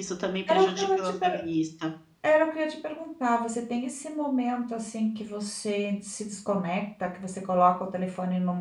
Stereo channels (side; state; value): both; identical; correlation 1.00